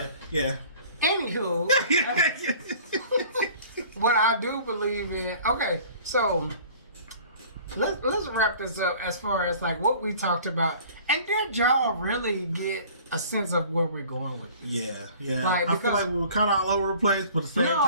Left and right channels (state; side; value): inverted; both; correlation -0.48